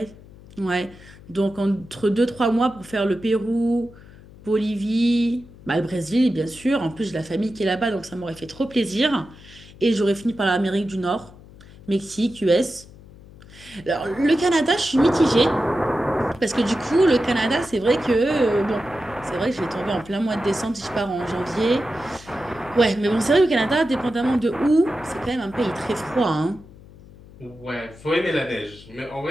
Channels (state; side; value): noise; left; hum, 21 dB below the sound